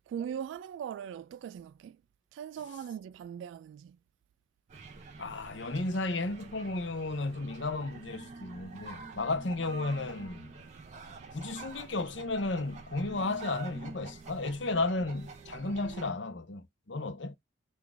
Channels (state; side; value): normal; both; correlation 0.15